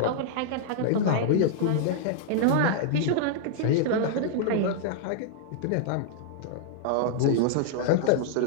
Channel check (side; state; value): both; different; correlation -0.01